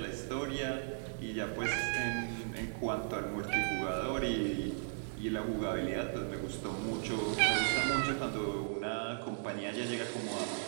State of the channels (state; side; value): silent; left; digital silence